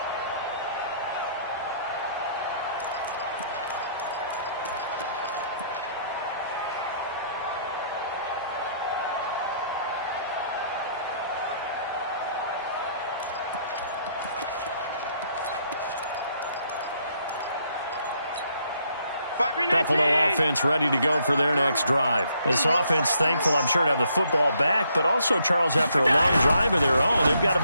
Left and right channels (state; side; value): inverted; both; correlation -0.69